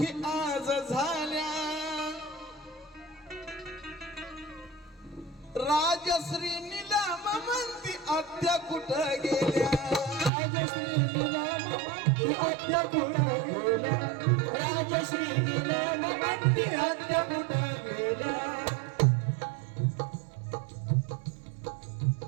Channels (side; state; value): left; drops out; at 10.3 s